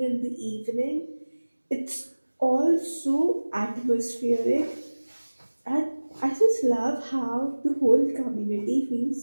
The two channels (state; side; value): inverted; both; correlation -1.00